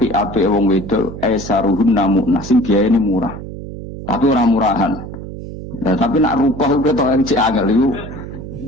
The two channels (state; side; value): noise; right; hum, 11 dB below the sound